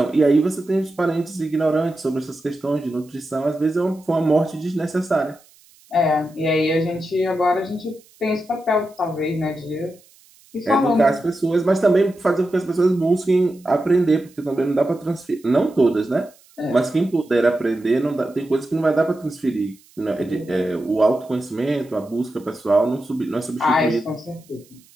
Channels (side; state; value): right; noise; hiss, 29 dB below the sound